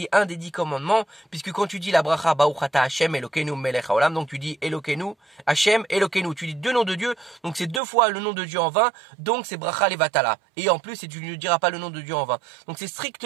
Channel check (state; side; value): drops out; left; at 7.8 s